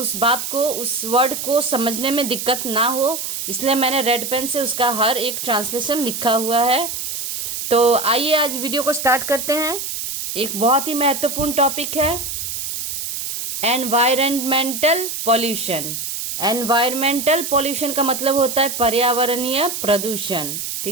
बात को, उस वर्ड को समझने में दिक्कत ना हो। इसलिए मैंने रेड पेन से उसका हर एक ट्रांसलेशन लिखा हुआ है। तो आइए आज वीडियो को स्टार्ट करते हैं। एक बहुत ही महत्वपूर्ण टॉपिक है एनवायरमेंटल पॉल्यूशन। एनवायरमेंटल पॉल्यूशन का मतलब होता है पर्यावरणीय प्रदूषण।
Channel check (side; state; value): right; noise; hiss, 4 dB below the sound